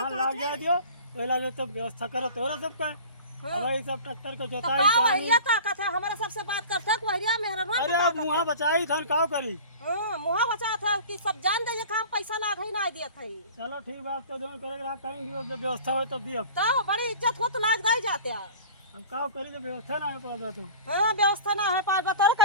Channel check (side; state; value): both; inverted; correlation -0.39